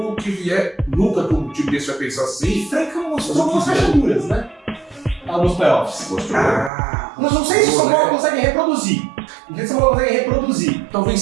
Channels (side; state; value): left; drops out; at 6.7 s